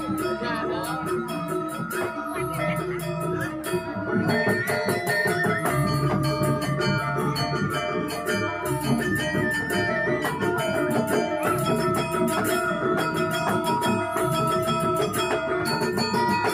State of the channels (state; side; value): identical; both; correlation 1.00